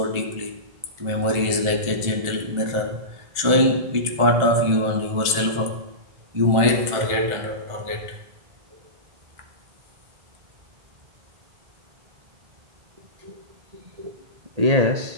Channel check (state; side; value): late; left; 1.5 ms